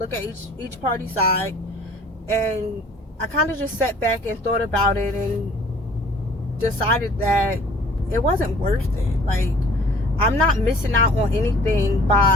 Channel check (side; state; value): both; normal; correlation 0.53